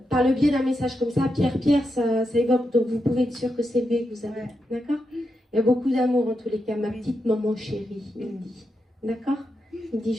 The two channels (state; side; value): normal; both; correlation 0.86